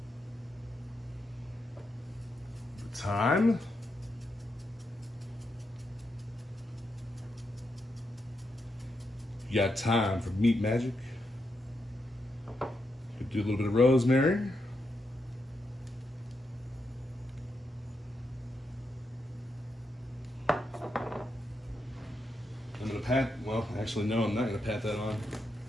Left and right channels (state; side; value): normal; both; correlation 0.83